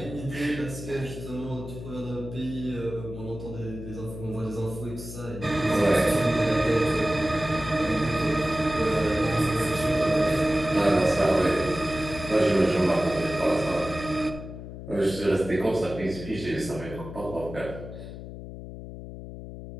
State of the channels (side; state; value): left; noise; hum, 11 dB below the sound